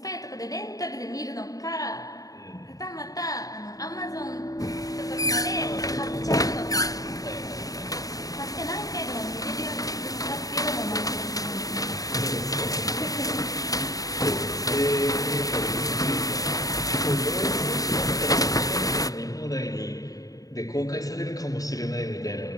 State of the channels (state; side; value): late; right; 0.17 ms